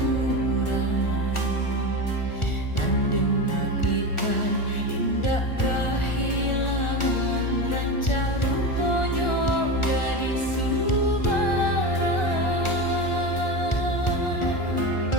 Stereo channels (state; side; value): late; right; 1.4 ms